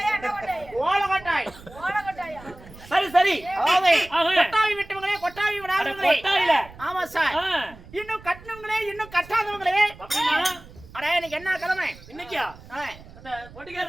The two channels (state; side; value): noise; right; rumble, 20 dB below the sound